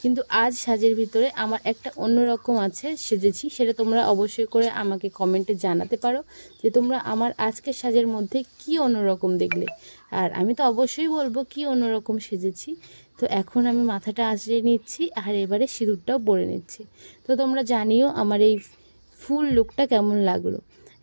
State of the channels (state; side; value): inverted; both; correlation -1.00